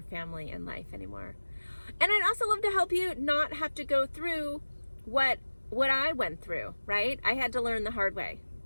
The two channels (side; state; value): both; inverted; correlation -1.00